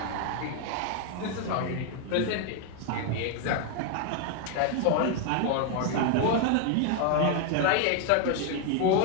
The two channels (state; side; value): different; both; correlation 0.01